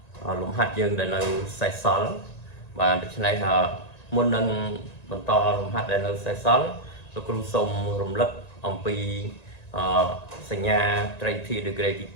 លំហាត់យើងដែលនៅសេសសល់បាទដូច្នេះមុននឹងបន្តលំហាត់ដែលនៅសេសសល់លោកគ្រូសូមរំលឹកអំពីសញ្ញាត្រីធាតុ degree ទ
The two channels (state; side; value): late; right; 1.9 ms